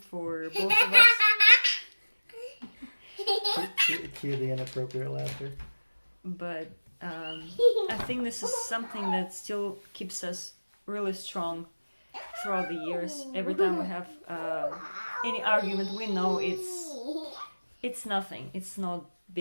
both of us. Cue the inappropriate laughter. But I think this is something that still keeps us really strong throughout the years. Every time we have any argument, we know it's nothing. It's not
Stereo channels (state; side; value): inverted; both; correlation -1.00